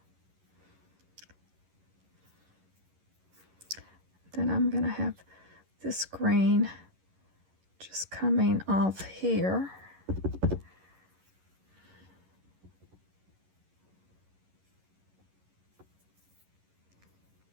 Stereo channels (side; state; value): left; late; 11 ms